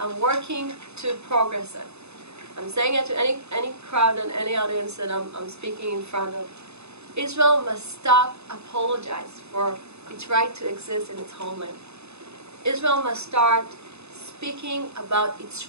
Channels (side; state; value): left; late; 0.80 ms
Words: working to progress it. I'm saying it to any crowd and any audience that I'm speaking in front of. Israel must stop apologize for its right to exist in its homeland. Israel must start speaking about its